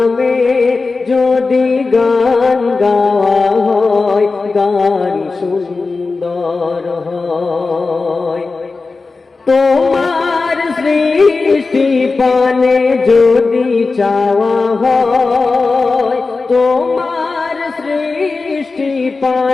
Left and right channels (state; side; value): quieter; right; 4.0 dB